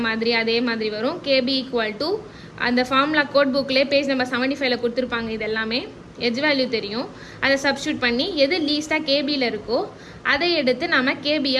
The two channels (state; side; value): identical; both; correlation 1.00